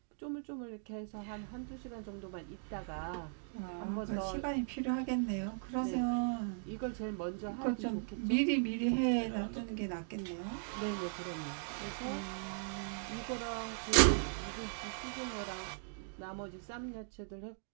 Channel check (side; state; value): left; silent; digital silence